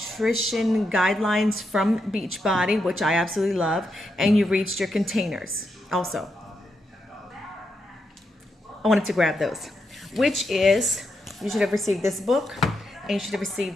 guidelines from Beachbody, which I absolutely love, and you reached your containers also. I wanted to grab those, which is you should have received this book and you should have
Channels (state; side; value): normal; both; correlation 0.83